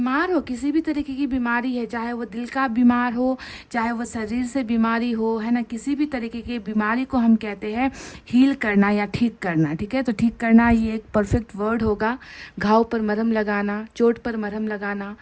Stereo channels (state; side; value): identical; both; correlation 1.00